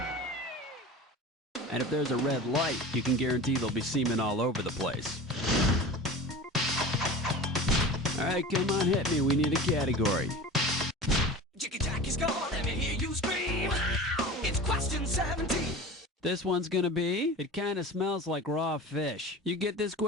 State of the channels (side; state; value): both; normal; correlation 0.35